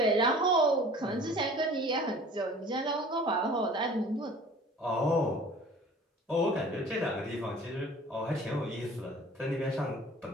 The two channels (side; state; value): both; normal; correlation 0.46